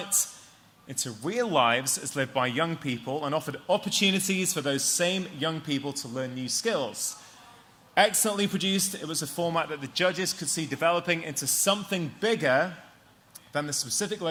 into real lives as lived by young people and offered opportunities for those same young people to learn new skills. Excellently produced, it was a format that the judges could see developing into something bigger than the specific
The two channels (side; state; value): both; identical; correlation 1.00